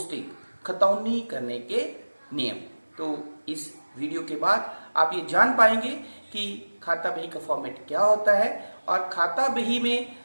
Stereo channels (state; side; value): inverted; both; correlation -1.00